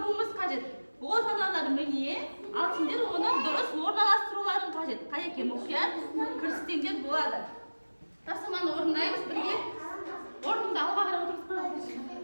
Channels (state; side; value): inverted; both; correlation -1.00